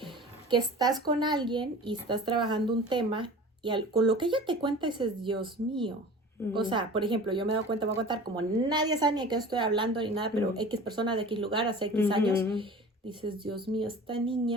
que estás con alguien y estás trabajando un tema y con lo que ella te cuenta dices, Dios mío. O sea, por ejemplo, yo me he dado cuenta, voy a contar, como nadie sabe ni de qué estoy hablando ni nada, pero X persona de X lugar hace X años, dices, Dios mío, esta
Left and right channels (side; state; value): both; normal; correlation 0.39